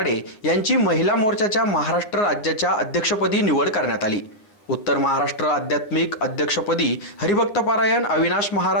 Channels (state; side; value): late; right; 9.5 ms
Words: यांची महिला मोर्चाच्या महाराष्ट्र राज्याच्या अध्यक्षपदी निवड करण्यात आली। उत्तर महाराष्ट्र आध्यात्मिक अध्यक्षपदी हरिभक्तपरायण अविनाश